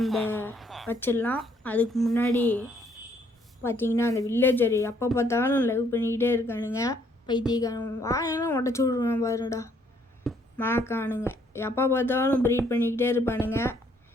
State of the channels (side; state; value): both; normal; correlation 0.67